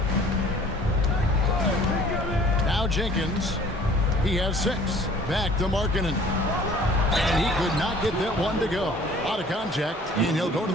Now Jenkins. He has 6. Back to Markkanen. And he could not get that one to go. Out of contact, and he'll go to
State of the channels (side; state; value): both; normal; correlation 0.51